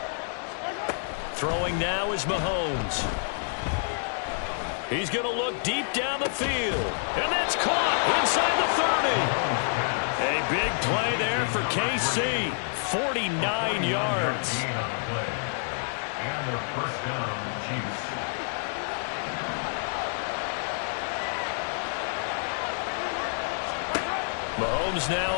Throwing now is Mahomes. He's going to look deep down the field. And that's caught inside the 30. A big play there for KC. 49 yards. And their first down, Chiefs. Mahomes now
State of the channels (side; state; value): right; silent; 56 dB below the other